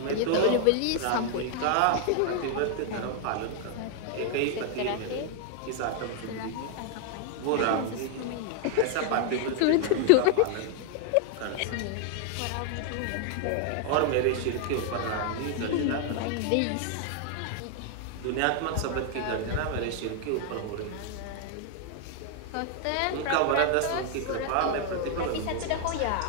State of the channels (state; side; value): different; both; correlation 0.01